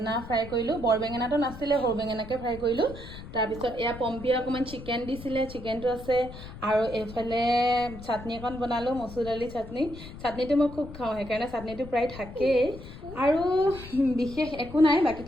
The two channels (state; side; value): noise; left; rumble, 14 dB below the sound